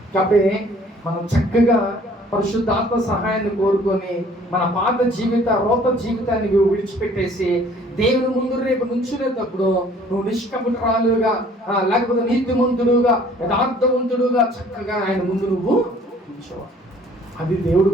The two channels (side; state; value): both; normal; correlation 0.56